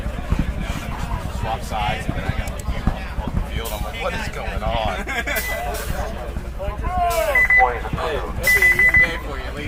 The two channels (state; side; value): identical; both; correlation 1.00